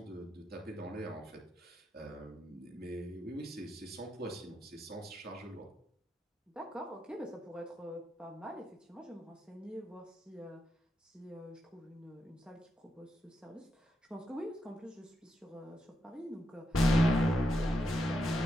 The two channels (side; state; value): both; normal; correlation 0.84